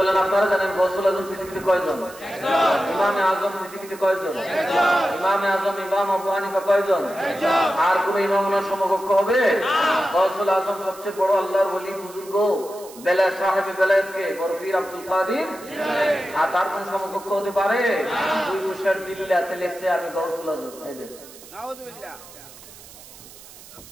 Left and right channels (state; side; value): noise; right; hiss, 19 dB below the sound